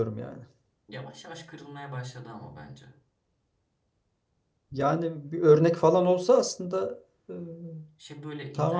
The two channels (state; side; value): identical; both; correlation 1.00